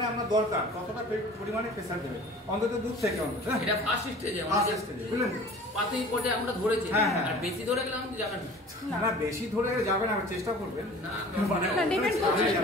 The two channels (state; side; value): normal; both; correlation 0.44